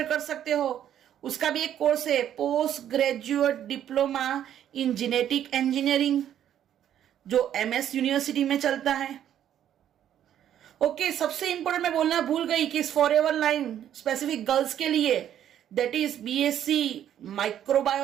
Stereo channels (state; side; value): quieter; left; 10.5 dB